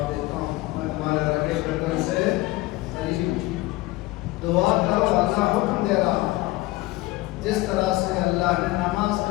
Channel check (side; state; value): right; quieter; 19.6 dB